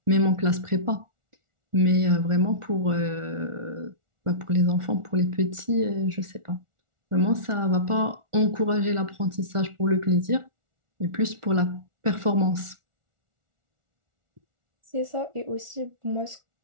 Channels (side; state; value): left; late; 1.4 ms